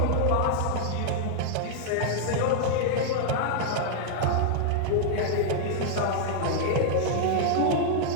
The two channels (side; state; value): both; different; correlation -0.01